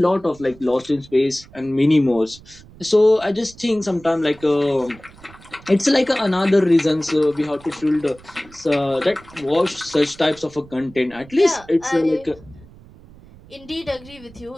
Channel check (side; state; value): right; noise; rumble, 22 dB below the sound